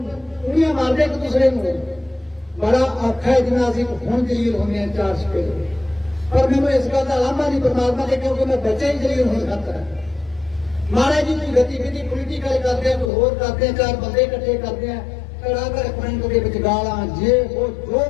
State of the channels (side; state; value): right; drops out; at 13.1 s